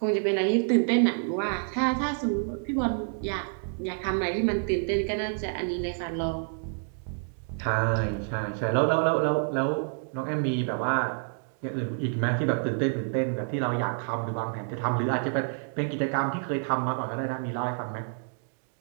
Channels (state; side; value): silent; left; 59 dB below the other